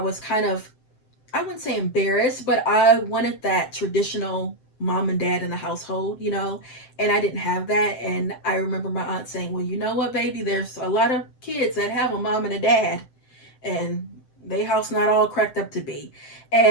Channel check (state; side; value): late; right; 7.7 ms